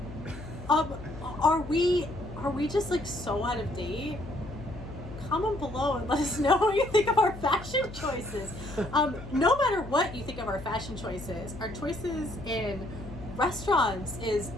Are we just like so out of date? Comment below and let us know what you think of our fashion choices. No matter what you think of our fashion choices, our choices in restaurants is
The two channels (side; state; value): left; noise; hum, 13 dB below the sound